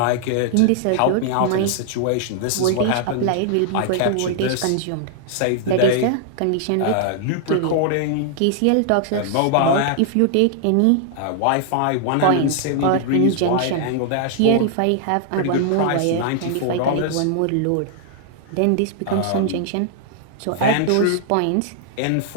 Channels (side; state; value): both; different; correlation 0.00